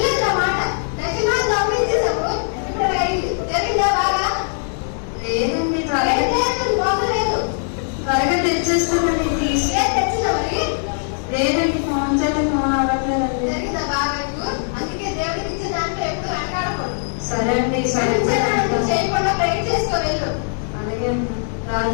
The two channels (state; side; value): silent; right; 62 dB below the other